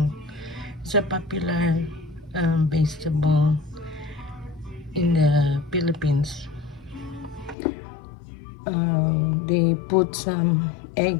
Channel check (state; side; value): drops out; right; at 7.6 s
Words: It's a popular vegetable in the Philippines. They put some